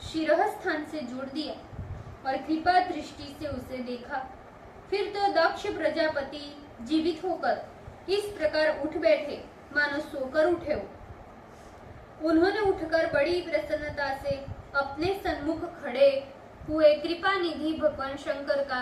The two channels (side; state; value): both; identical; correlation 1.00